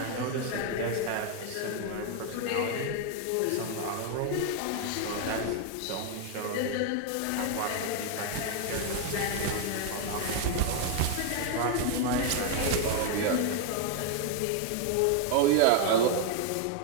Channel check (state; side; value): different; both; correlation 0.01